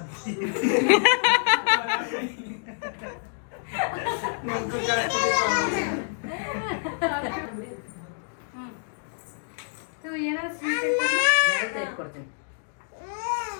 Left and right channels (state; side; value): silent; right; digital silence